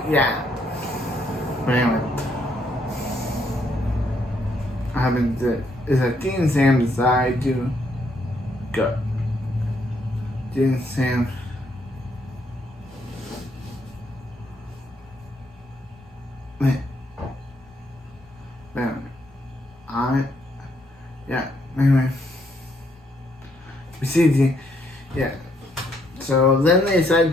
yeah. But anyway, what happens is that Dean and Sam decide to go. Dean and Sam. Anyway. We see Dean. Yeah. So then they decide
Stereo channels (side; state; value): both; normal; correlation 0.72